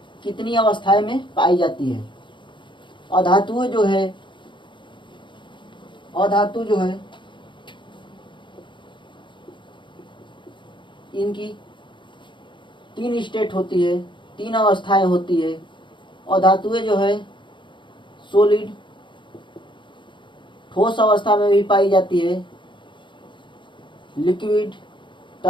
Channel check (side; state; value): right; late; 0.23 ms